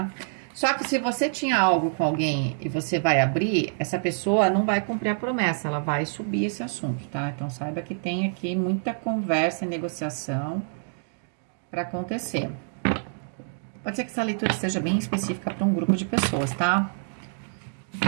Só que se você tinha algo com alguém e você vai abrir, essa pessoa não vai cumprir a promessa, ela vai subir esse assunto, tá? Então, saiba que tem aqui muita conversa e negociação para acontecer. Pode ser que essa leitura seja bem específica para um grupo de pessoas, tá?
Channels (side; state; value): left; silent; digital silence